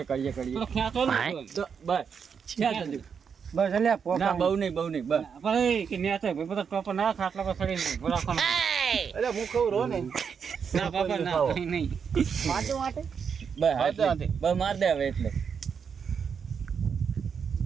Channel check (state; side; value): quieter; left; 6.6 dB